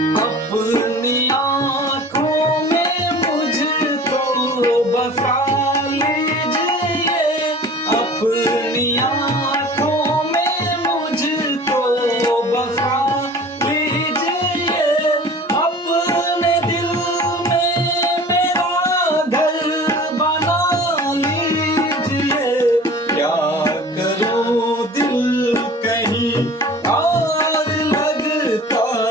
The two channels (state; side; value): normal; both; correlation 0.43